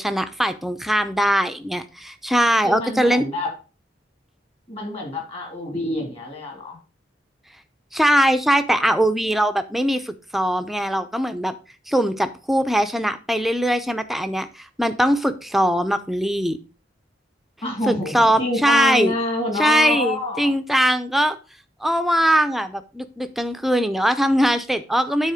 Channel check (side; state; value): both; normal; correlation 0.85